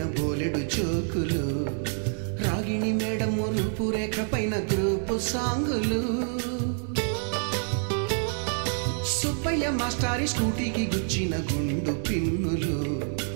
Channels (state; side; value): silent; left; 56 dB below the other